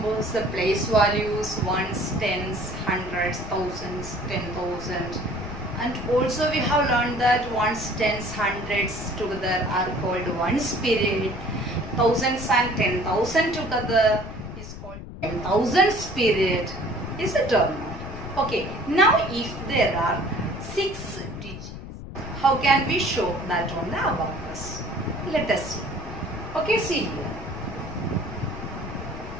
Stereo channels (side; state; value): left; noise; rumble, 11 dB below the sound